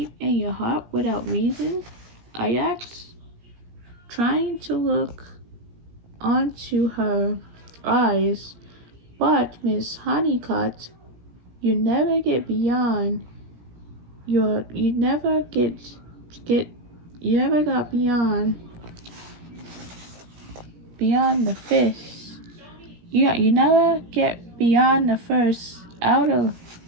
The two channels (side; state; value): left; late; 17 ms